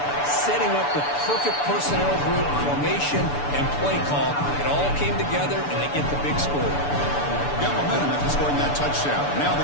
setting up the perfect personnel group, formation, and play call. It all came together, and they get the big score. Got momentum after scoring that touchdown. Now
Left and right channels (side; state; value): right; late; 6.9 ms